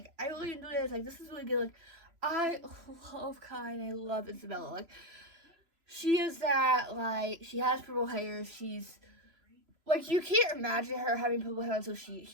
I really enjoy this. Like, this is really good. Like, I love Kai, and I love Isabella. Like, she is that, like, she has purple hair. She's, like, you can't imagine her having purple hair until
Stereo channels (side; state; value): left; late; 3.0 ms